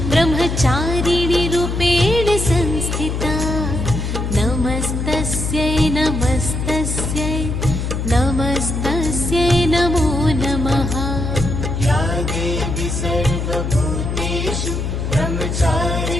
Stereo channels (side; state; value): left; noise; hum, 2 dB below the sound